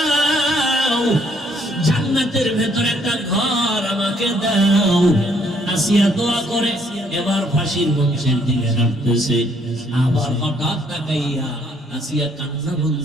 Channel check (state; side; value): normal; both; correlation 0.67